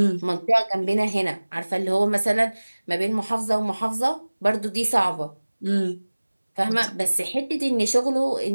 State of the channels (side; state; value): both; inverted; correlation -1.00